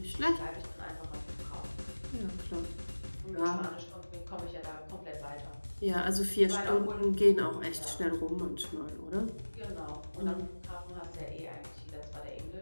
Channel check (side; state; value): both; inverted; correlation -1.00